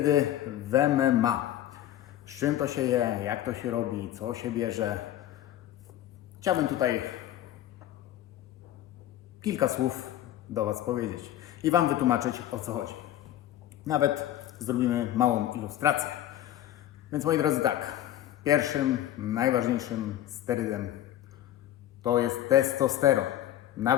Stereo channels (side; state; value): right; quieter; 12.5 dB